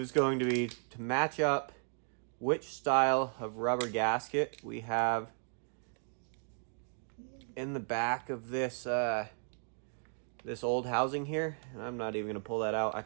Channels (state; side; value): silent; left; 54 dB below the other